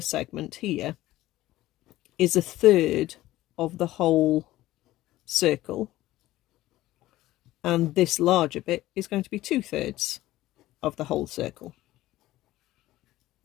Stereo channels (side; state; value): right; quieter; 16.1 dB